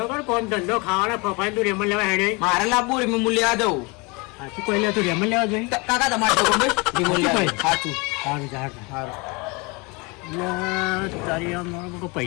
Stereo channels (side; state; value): right; quieter; 28.1 dB